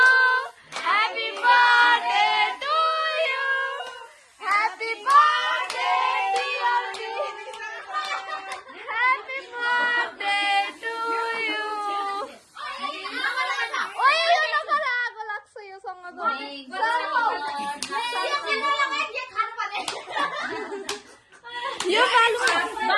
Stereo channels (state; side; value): identical; both; correlation 1.00